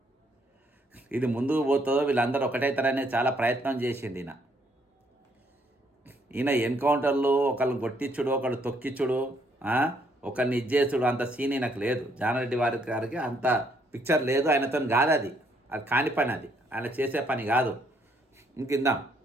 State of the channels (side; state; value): both; normal; correlation 0.69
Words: ఇది ముందుకు పోతుందో వీళ్ళందరూ ఒకటైతారనే చాలా ప్రయత్నం చేసింది ఈయన ఎన్కౌంటర్లు ఒకళ్ళని కొట్టించుడు, ఒకళ్ళు తొక్కిచ్చుడు, ఒకరిని ఇచ్చేసుడు అంత సీన్ ఈయనకు లేదు. జానారెడ్డి గారికి అంత పిక్చర్ లేదు, ఆయనతో కాదు, అది కాని పని, అది ఆయన చేసే పని కాదు. ఇంకిందాం